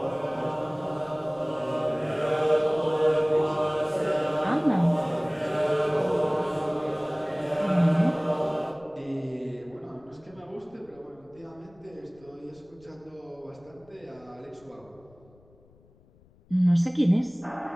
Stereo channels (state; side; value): noise; left; rumble, 28 dB below the sound